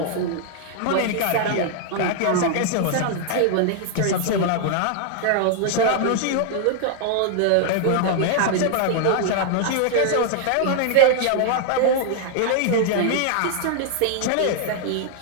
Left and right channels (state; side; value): different; both; correlation 0.00